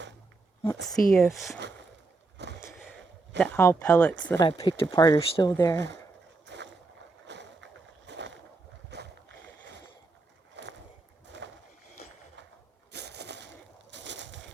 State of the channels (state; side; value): quieter; left; 3.6 dB